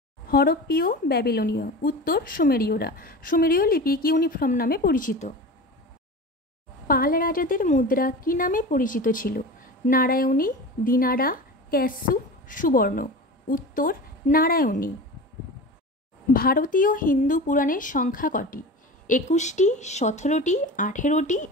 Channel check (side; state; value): both; normal; correlation 0.32